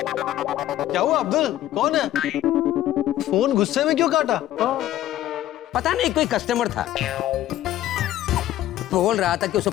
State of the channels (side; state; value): right; quieter; 13.3 dB